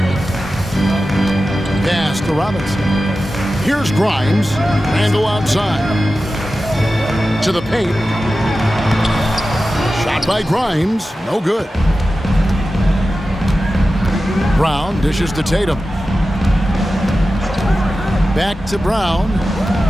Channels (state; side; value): normal; both; correlation 0.93